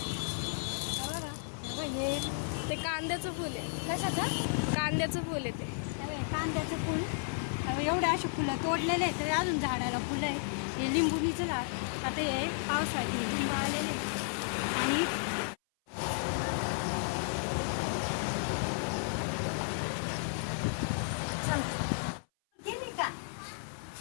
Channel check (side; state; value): right; silent; 56 dB below the other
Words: बघा. हे ते कांद्याचं फुल आहे. कशाचं? कांद्याचं फुल आहे ते. कांद्याचं फुल. एवढे असे फुलं तोडलेले आहेत, तरी अजून झाडाला फुलं आहे. हे लिंबुनीचं लाव. आता हे पावसाळ्यात लिंबू आलेले आणि